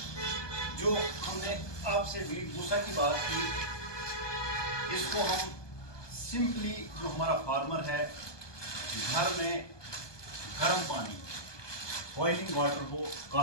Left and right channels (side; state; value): right; late; 1.2 ms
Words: जो हमने आपसे वीट भूसा की बात की, इसको हम सिंपली, जो हमारा फार्मर है, घर में गर्म पानी, बॉइलिंग वाटर हो,